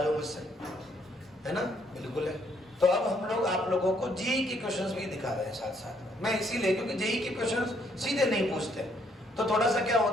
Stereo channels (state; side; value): normal; both; correlation 0.69